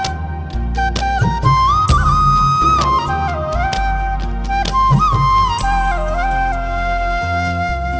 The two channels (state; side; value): identical; both; correlation 1.00